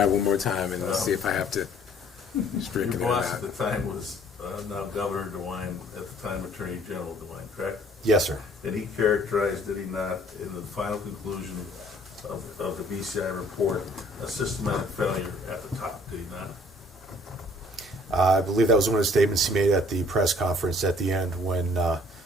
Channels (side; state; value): both; normal; correlation 0.57